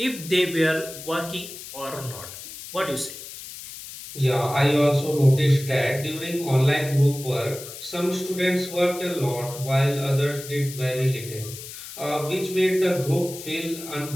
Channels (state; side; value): noise; left; hiss, 12 dB below the sound